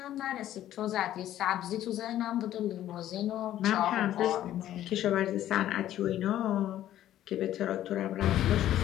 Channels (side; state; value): right; quieter; 12.5 dB